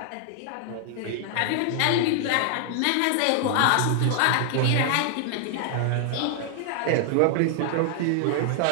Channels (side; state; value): both; different; correlation 0.00